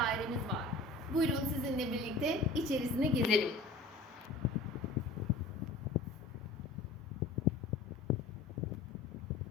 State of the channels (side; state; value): right; quieter; 3.3 dB